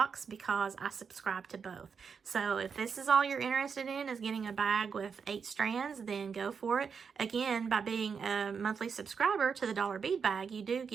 because I subscribe to both. So if this is all you're interested in, is getting a bag with 8 strands, then go for it. Again, by being a monthly subscriber to the dollar bead bag, you do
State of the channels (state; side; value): quieter; left; 6.1 dB